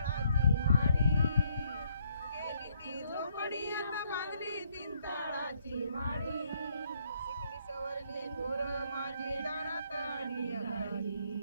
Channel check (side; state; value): both; inverted; correlation -0.69